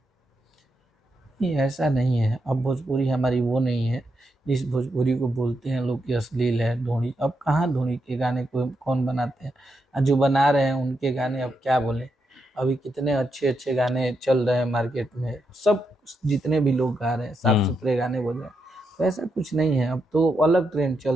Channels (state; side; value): normal; both; correlation 0.83